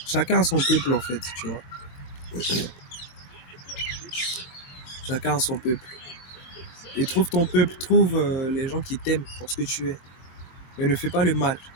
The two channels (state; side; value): late; right; 22 ms